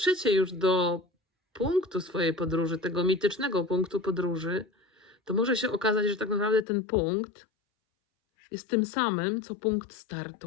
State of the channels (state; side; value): drops out; right; at 6.7 s